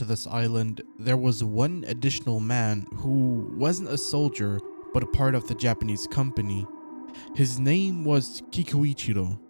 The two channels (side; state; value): both; inverted; correlation -1.00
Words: this island, there was one additional man who wasn't a soldier but a part of the Japanese company. His name was Kikuichiro,